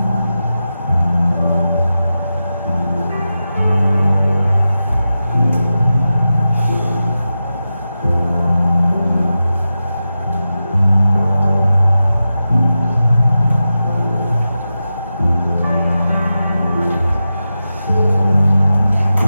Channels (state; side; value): inverted; both; correlation -0.92